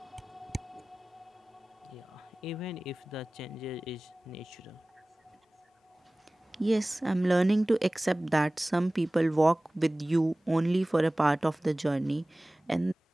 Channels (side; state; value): both; normal; correlation 0.98